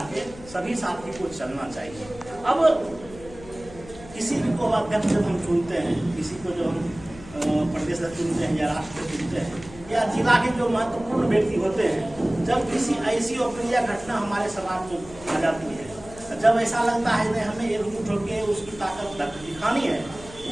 के सभी साथी को चलना चाहिए। अब किसी को अध्यक्ष जब हम चुनते हैं, किसी को जो हम प्रदेश चुनते हैं या राष्ट्र चुनते हैं या जिला के जो महत्वपूर्ण व्यक्ति होते हैं, जब किसी ऐसी अप्रिय घटना हमारे समाज में आ जाती है, जब ऐसा लगता है कि हमें एकजुट होकर उसकी ताकत दिखानी है,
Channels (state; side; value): noise; left; hum, 18 dB below the sound